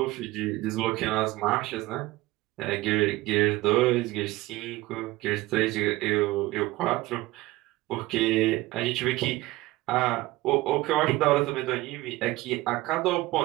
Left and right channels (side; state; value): left; quieter; 18.8 dB